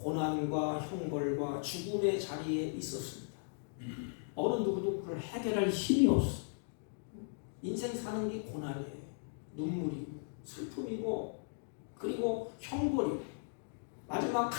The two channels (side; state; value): right; silent; digital silence